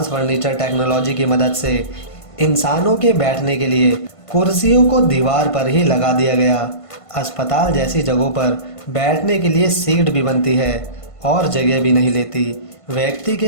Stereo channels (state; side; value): late; right; 1.5 ms